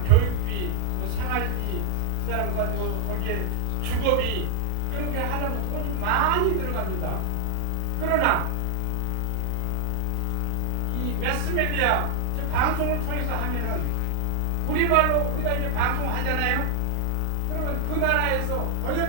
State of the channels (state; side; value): different; both; correlation 0.00